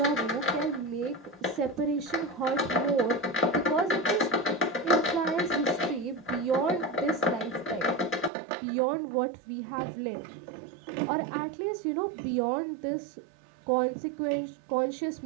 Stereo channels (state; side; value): drops out; left; at 8.3 s